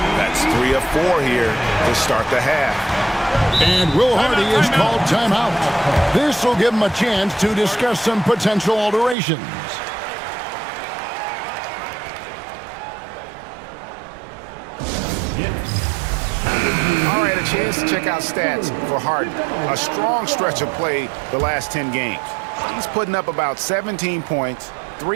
That's 3 of 4 here to start the half. And Will Hardy is called timeout. This will give him a chance to discuss some potential alterations. All right, a chance to check out stats for Harden. A strong stretch of play the last 10 games. He's putting up about 17 points,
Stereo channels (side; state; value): left; drops out; at 9.2 s